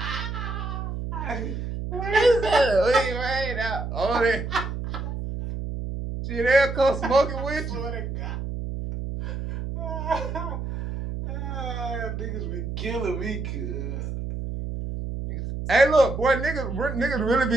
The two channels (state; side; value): noise; right; hum, 5 dB below the sound